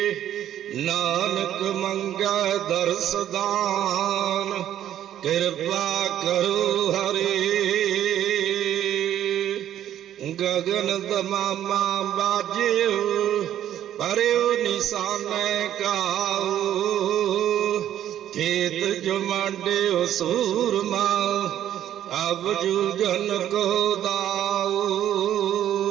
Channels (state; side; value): quieter; left; 11.3 dB